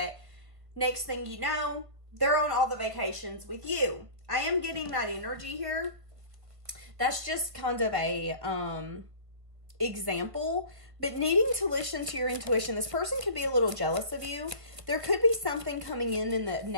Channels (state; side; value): late; left; 1.5 ms